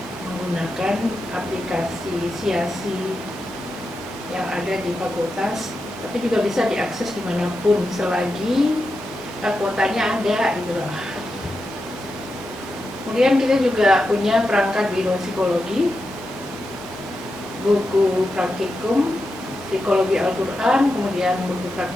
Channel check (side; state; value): both; normal; correlation 0.88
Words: menggunakan aplikasi Siasi yang ada di fakultas, tapi juga bisa diakses dimanapun selagi kuotanya ada gitu loh. Kemudian kita juga punya perangkat biro psikologi, buku praktikum psikologi Al-Quran, kemudian buku